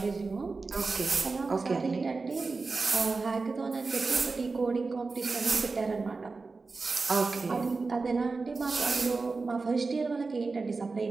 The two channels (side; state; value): left; quieter; 4.0 dB